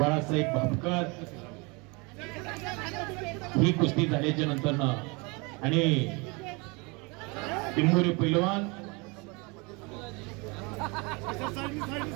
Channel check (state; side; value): quieter; left; 28.5 dB